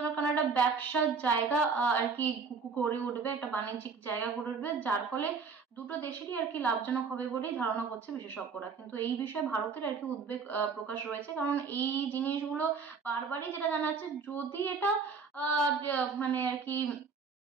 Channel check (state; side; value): quieter; left; 5.2 dB